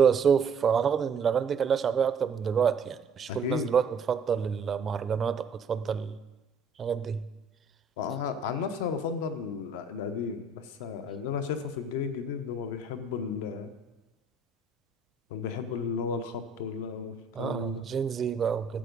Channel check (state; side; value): quieter; left; 3.8 dB